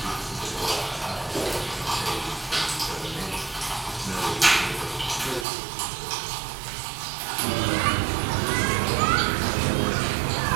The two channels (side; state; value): left; drops out; at 5.5 s